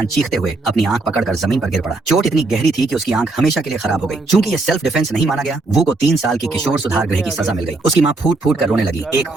चीखते हुए अपनी आंख पकड़कर जमीन पर गिर पड़ा। चोट इतनी गहरी थी कि उसकी आंख हमेशा के लिए ओ खराब हो गई। भाई चूंकि ये साहब। सेल्फ डिफेंस नहीं माना गया, वू को 3 साल की ओ किशोर भाई सुधार कोर्ट गृह में की आ गया सजा मिल गई। सीधा। उसकी माँ फूट फूट कर भाई रोने लगी। इसका एक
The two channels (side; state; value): left; quieter; 3.2 dB